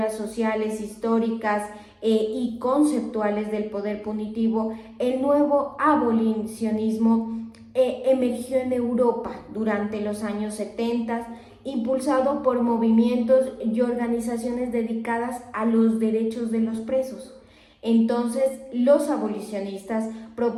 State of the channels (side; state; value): both; identical; correlation 1.00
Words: sociales, históricas y conceptuales del poder punitivo. El nuevo abolicionismo emergió en Europa durante los años 70, impulsado por movimientos y organizaciones dedicadas a los derechos de los presos. Entonces, los abolicionistas